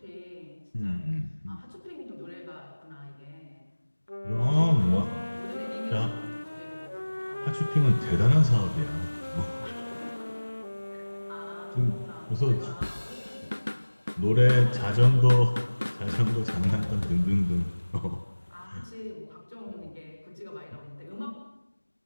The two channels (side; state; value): both; inverted; correlation -1.00